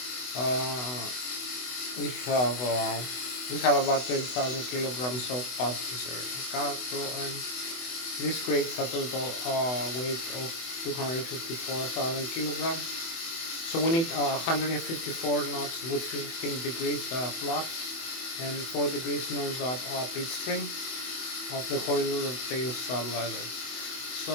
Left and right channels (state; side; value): late; right; 24 ms